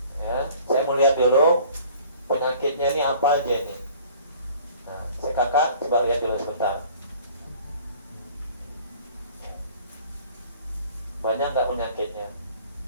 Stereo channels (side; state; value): both; inverted; correlation -0.50